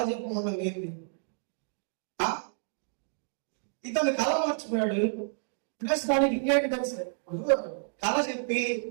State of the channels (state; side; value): silent; left; digital silence